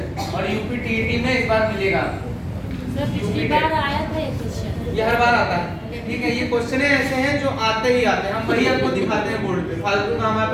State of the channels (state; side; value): identical; both; correlation 1.00